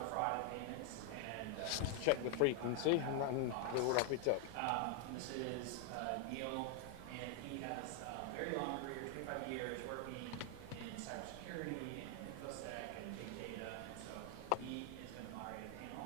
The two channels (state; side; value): different; both; correlation 0.00